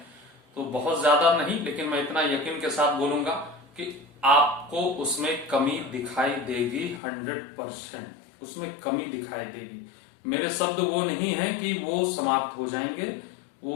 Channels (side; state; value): right; drops out; at 7.0 s